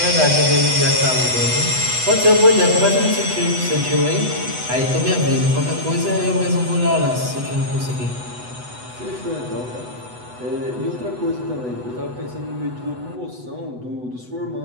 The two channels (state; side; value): late; left; 8.0 ms